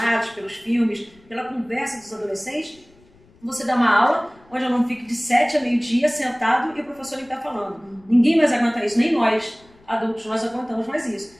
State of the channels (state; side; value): noise; left; rumble, 29 dB below the sound